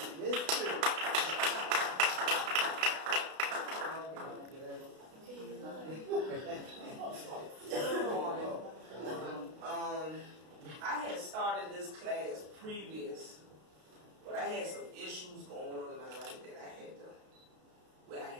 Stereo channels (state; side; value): late; left; 32 ms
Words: I had started this class previous, but I had some issues going on in my life that I